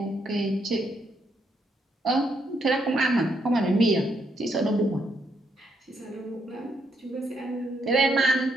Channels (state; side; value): normal; both; correlation 0.76